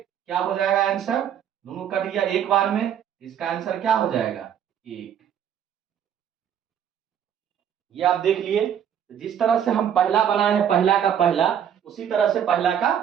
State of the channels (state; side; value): quieter; left; 9.1 dB